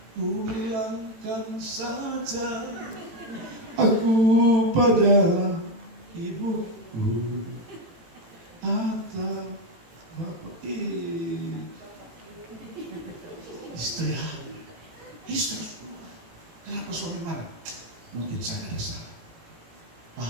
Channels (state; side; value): late; left; 18 ms